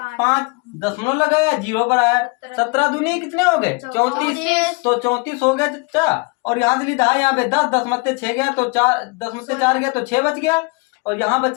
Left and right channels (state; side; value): quieter; right; 30.4 dB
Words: 5, दशमलव लगाया 0 पर आया। 17 दूनी कितने हो गए, 34, तो 34 हो गया चाचा। और यहाँ से लिखा है यहाँ पे 10, 10 मत्ते 6 गया, तो 4 10 में से 4 गया तो 6 बच गया, और यहाँ